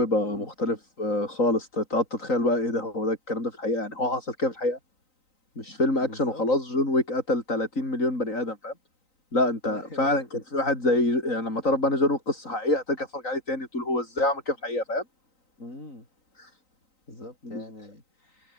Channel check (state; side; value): late; right; 3.9 ms